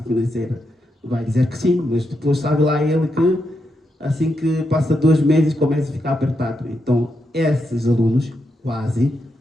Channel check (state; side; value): normal; both; correlation 0.83